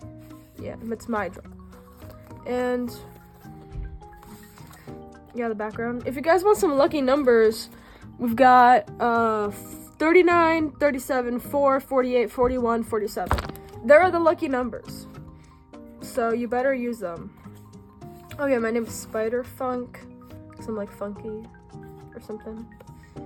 my drawing. And yeah, the background. If you guys want some lucky numbers, we've got 39, 37, 4, 48, 41, 47. There are the lucky numbers. So you better use them. Oh yeah, my name is Spider Funk, because I'm like funky or something.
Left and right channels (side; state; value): both; identical; correlation 1.00